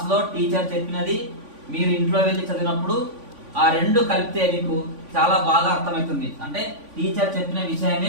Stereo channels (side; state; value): left; late; 3.5 ms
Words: టీచర్ చెప్పినది మీరు ఇంట్లో వెళ్ళి చదివినప్పుడు ఆ రెండు కలిపితే మీకు చాలా బాగా అర్థమవుతుంది. అంటే టీచర్ చెప్పిన